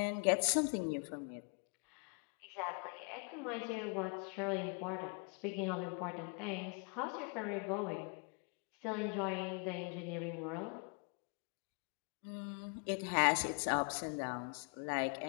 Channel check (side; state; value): right; quieter; 36.7 dB